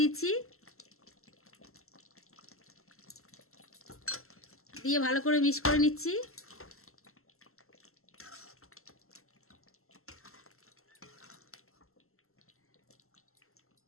দিচ্ছি। দিয়ে ভালো করে মিক্স করে নিচ্ছি।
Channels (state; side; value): late; right; 0.62 ms